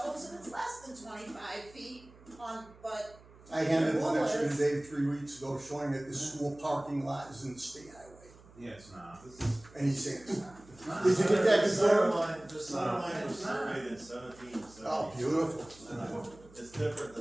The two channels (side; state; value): right; noise; hum, 23 dB below the sound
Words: that it's less than 25 feet on, but I handed the one rule extra is- today 3 weeks ago showing that the school parking lot is in the state highway. Yeah, it's not. And he's saying it's not. It's not. Did you get that The center confirmed? line, the center line was surveyed in 1770. Oh, beautiful. It's different